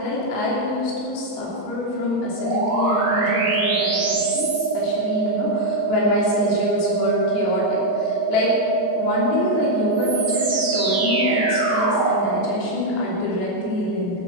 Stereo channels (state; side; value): normal; both; correlation -0.01